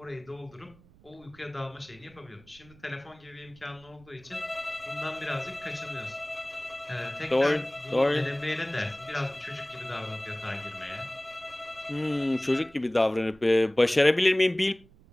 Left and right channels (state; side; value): noise; right; rumble, 26 dB below the sound